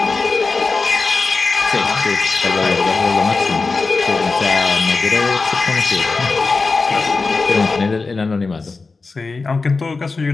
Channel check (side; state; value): right; quieter; 4.1 dB